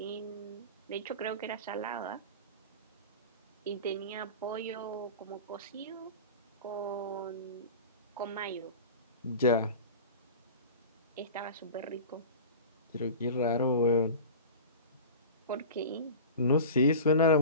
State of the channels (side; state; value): both; inverted; correlation -0.34